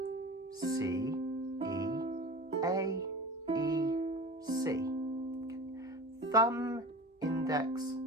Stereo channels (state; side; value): normal; both; correlation 0.35